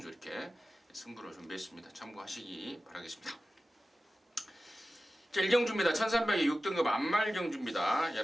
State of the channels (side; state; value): both; normal; correlation 0.95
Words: 이렇게 승부를 준비했습니다. 참고하시기 바라겠습니다. 자, 1경주입니다. 1300에 6등급 안말경주입니다.